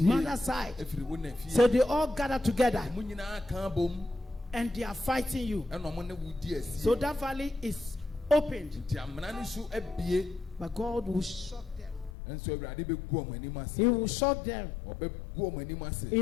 side. So they all gather together. And they are fighting you. So that valley is opened. But God will shock them. He will shock them.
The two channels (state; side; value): drops out; right; at 12.1 s